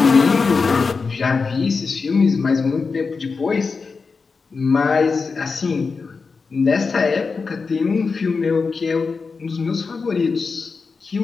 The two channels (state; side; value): quieter; right; 4.7 dB